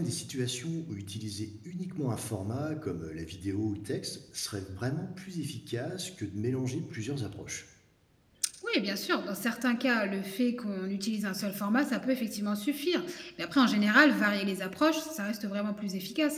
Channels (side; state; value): both; identical; correlation 1.00